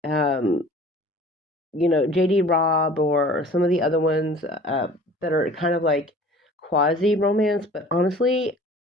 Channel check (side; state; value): both; normal; correlation 0.46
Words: J.D. Robb or some of the other ones that are kind of like quasi romance, but honestly,